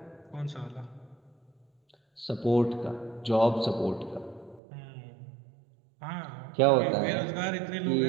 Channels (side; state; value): left; drops out; at 4.6 s